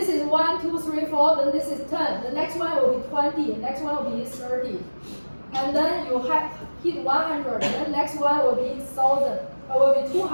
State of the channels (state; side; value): inverted; both; correlation -1.00